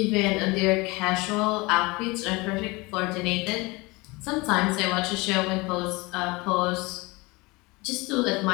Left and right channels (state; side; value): quieter; right; 24.3 dB